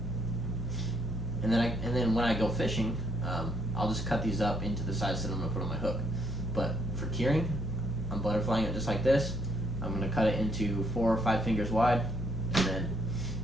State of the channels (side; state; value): both; normal; correlation 0.70